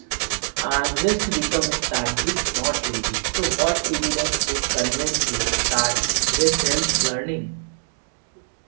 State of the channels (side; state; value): left; silent; digital silence